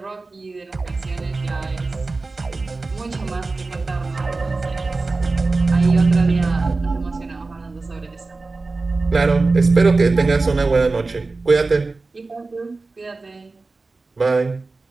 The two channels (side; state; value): left; quieter; 3.6 dB